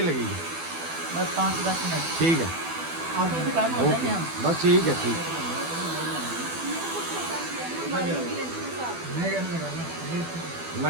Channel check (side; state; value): left; late; 12 ms